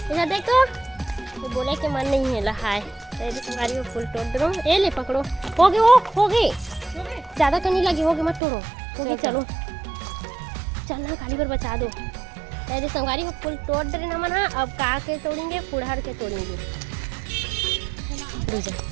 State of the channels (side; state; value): left; drops out; at 8.4 s